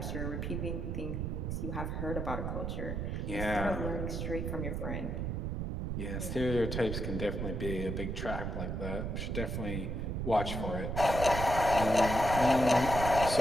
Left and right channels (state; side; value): noise; right; rumble, 2 dB below the sound